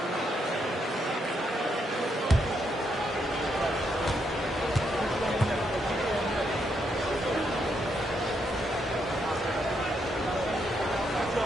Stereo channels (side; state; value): both; normal; correlation 0.78